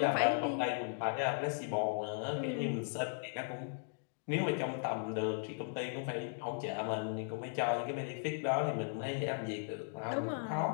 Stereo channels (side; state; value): right; silent; digital silence